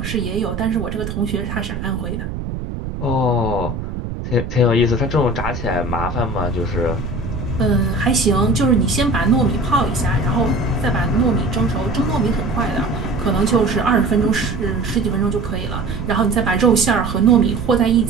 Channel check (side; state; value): right; noise; rumble, 6 dB below the sound